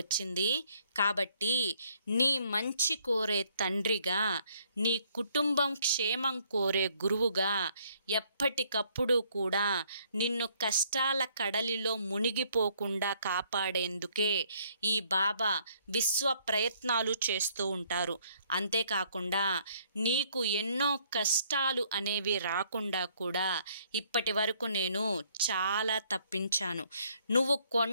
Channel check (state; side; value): inverted; both; correlation -0.66